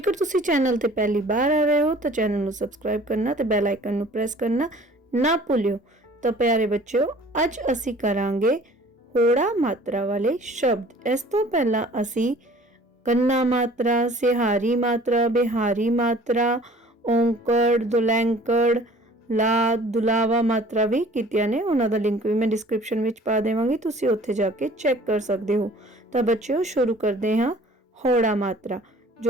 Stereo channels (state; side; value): normal; both; correlation 0.50